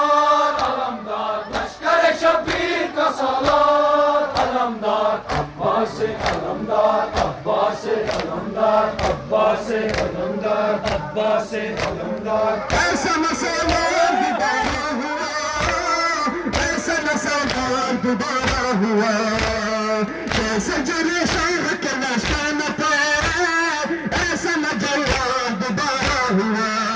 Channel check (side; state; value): both; identical; correlation 1.00